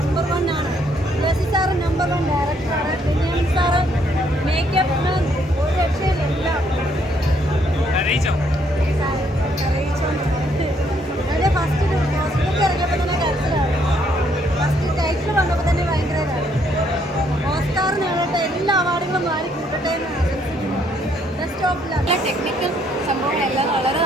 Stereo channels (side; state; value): both; normal; correlation 0.69